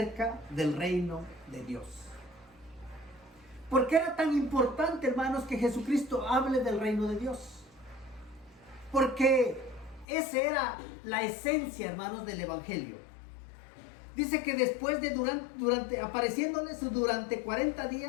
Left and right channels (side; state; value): right; drops out; at 10.1 s